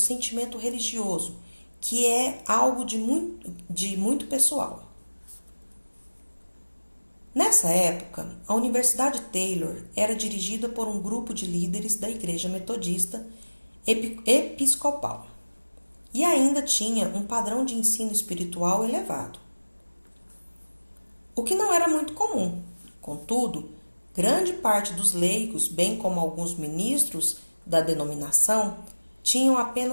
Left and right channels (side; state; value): both; inverted; correlation -1.00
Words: religioso, que é algo de muito pessoal. Nessa época, a Universidade Taylor era dirigida por um grupo de líderes da Igreja Metodista Episcopal e ainda tinha um padrão de ensino espiritual elevado, o que não era muito comum. Contudo, grande parte dos leigos, bem como alguns ministros da denominação, tinham